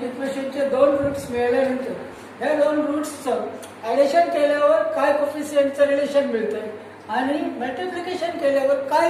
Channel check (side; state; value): both; identical; correlation 1.00